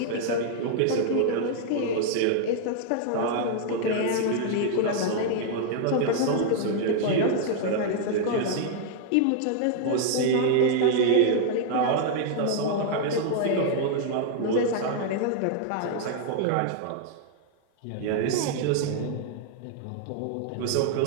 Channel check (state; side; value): different; both; correlation 0.00